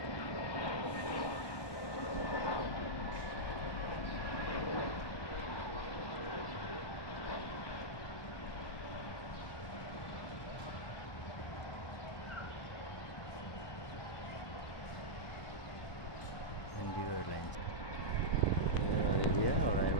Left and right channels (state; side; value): late; right; 1.2 ms